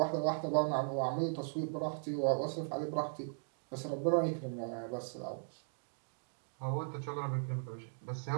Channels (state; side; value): silent; left; digital silence